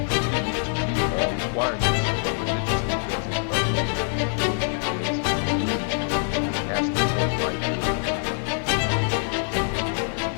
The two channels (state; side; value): silent; right; 59 dB below the other